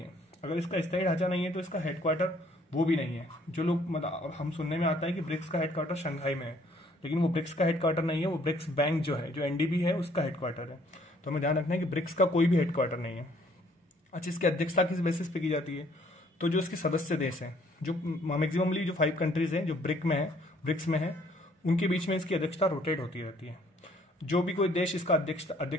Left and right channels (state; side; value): normal; both; correlation 0.62